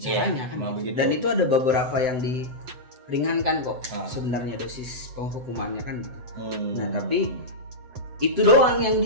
kan. Begitu. Dan itu ada beberapa yang diringankan kok sebenarnya dosis penghukumannya kan gitu. Nah, tapi itu doang yang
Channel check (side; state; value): left; late; 7.9 ms